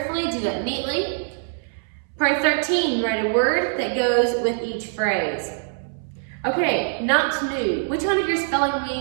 do that neatly. Part 13, write a word that goes with each phrase. Okay, not new. Which one of your spelling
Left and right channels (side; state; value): left; silent; 63 dB below the other